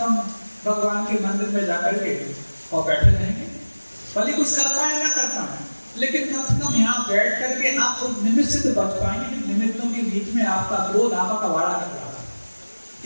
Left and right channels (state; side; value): inverted; both; correlation -1.00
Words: हम भगवान के मंदिर में जाकर के और बैठे रहेंगे, भले कुछ कर पाए ना कर पाए, लेकिन कम से कम यहाँ बैठ करके आप उस निमित्त से तो बच पाएंगे। निमित्तों के बीच में आपका क्रोध आपका वाड़ा कर रहा है,